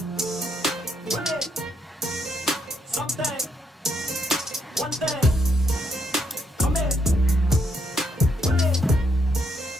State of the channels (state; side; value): normal; both; correlation 0.76